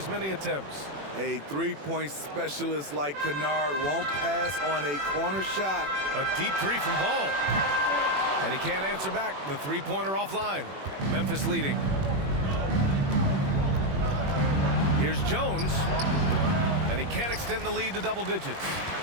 many attempts. A 3-point specialist like Kennard won't pass on a corner shot. A deep 3 from Ball. And he can't answer back. The 3-pointer offline. Memphis leading. Here's Jones. And he can't extend the lead to double digits.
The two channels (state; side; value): late; left; 21 ms